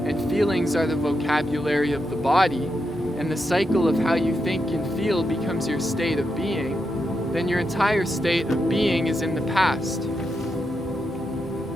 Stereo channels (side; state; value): both; normal; correlation 0.85